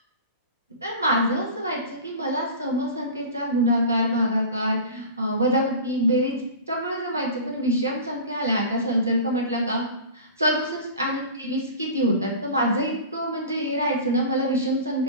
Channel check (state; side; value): inverted; both; correlation -0.35